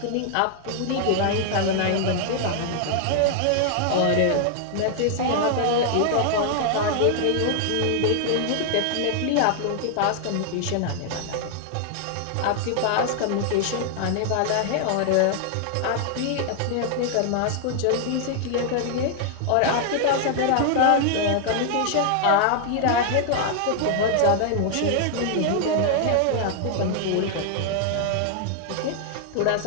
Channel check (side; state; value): both; different; correlation 0.00